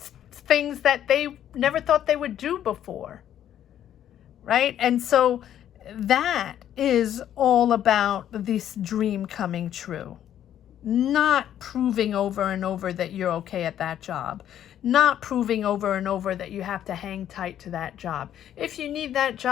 things that they never thought they would do before, right? And so that is all about this dream coming true, not proving over and over that you're okay at that job, not proving over and over that you have to hang tight to that job. If you need that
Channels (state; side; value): quieter; right; 10.8 dB